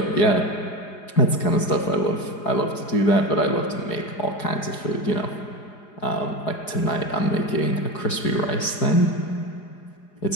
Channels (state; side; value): late; right; 4.9 ms